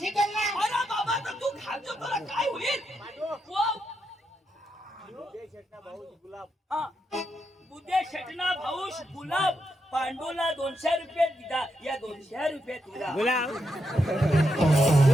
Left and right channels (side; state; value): both; normal; correlation 0.83